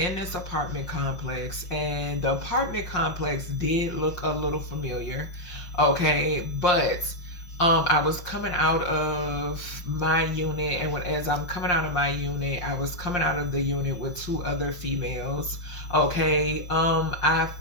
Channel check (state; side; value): late; right; 5.7 ms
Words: this apartment complex, and the apartment complex did look a little familiar. Okay, but I was coming out of my unit, and as I'm coming out of my unit, I was coming out of the unit with two other females. Okay, I